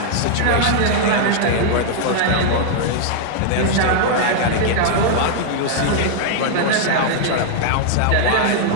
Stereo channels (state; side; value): different; both; correlation -0.01